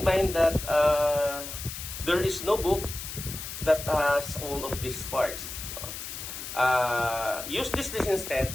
mind that there is no book that has all of these parts. Use this list instead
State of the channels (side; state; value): left; noise; hiss, 8 dB below the sound